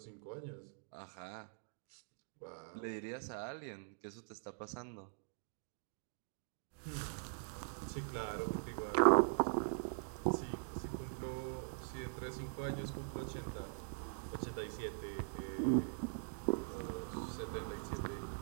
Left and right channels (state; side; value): silent; left; digital silence